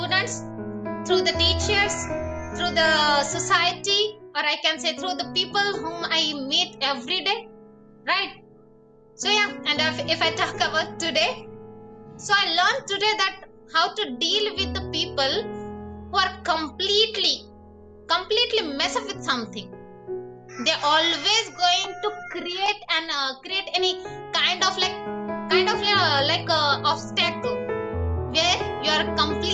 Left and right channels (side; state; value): both; identical; correlation 1.00